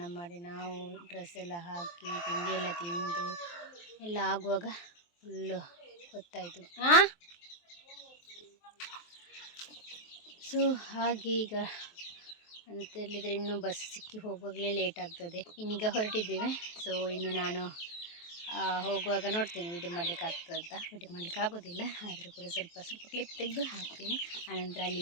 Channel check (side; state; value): right; late; 23 ms